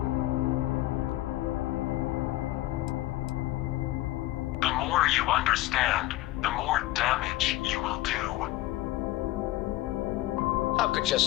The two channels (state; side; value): quieter; right; 16.7 dB